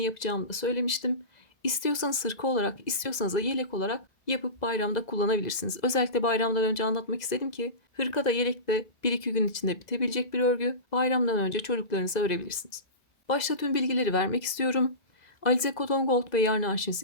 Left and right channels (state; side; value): late; right; 2.0 ms